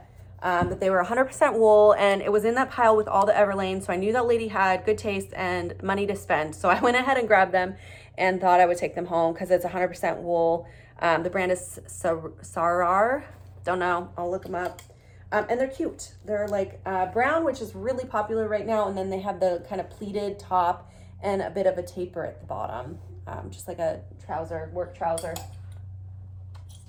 But they were 100% wool, and it was in that pile with all the Everlane, so I knew that lady had good taste and money to spend. So I went ahead and grabbed them and thought I would take them home because it's 100% wool. The brand is Sarar. Don't know. I'll look them up. And they're cute. They're like brown, which is really popular right now, and then they have the kind of pleated top and a bit of a taper at the bottom, just like a trouser, work trouser.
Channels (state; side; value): identical; both; correlation 1.00